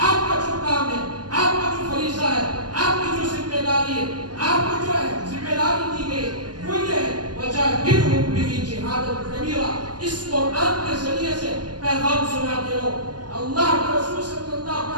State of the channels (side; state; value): left; late; 0.69 ms